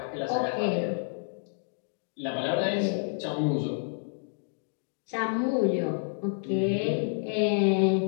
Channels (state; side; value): silent; right; digital silence